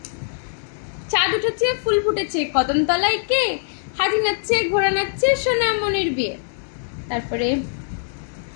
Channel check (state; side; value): silent; right; digital silence